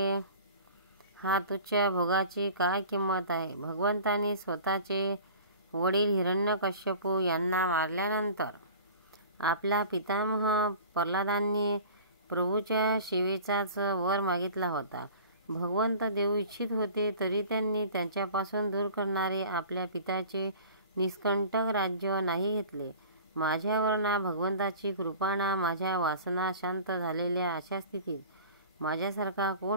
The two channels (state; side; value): inverted; both; correlation -0.42